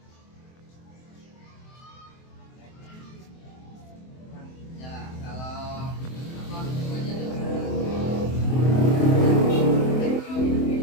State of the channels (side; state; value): right; late; 23 ms